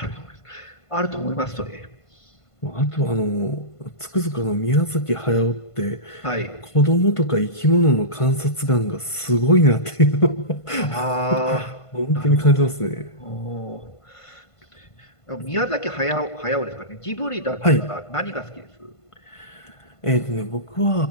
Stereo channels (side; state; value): right; late; 1.5 ms